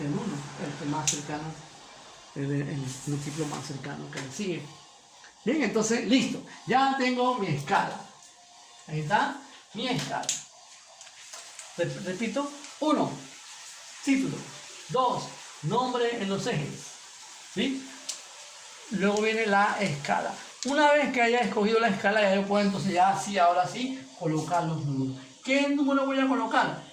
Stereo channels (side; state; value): both; identical; correlation 1.00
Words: el 1, el que más cercano, el múltiplo más cercano que le sigue. Bien, entonces, listo. Ya tengo mi escala. Ahí está mi escala. Repito, 1, título. 2, nombre en los ejes. ¿Sí? Luego viene la escala. Una vez que haya escogido la escala, ya yo puedo entonces ya sí, ahora sí, colocar los números. ¿Qué número voy a colocar?